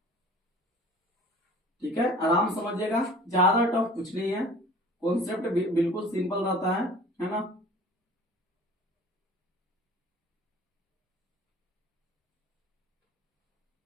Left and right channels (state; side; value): normal; both; correlation 0.45